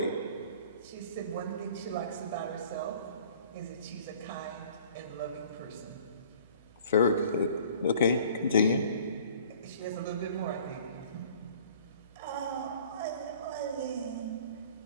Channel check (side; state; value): both; inverted; correlation -0.51